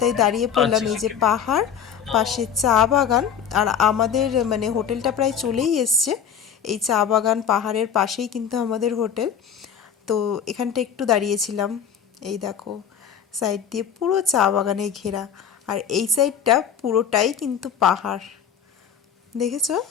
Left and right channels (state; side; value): quieter; right; 7.9 dB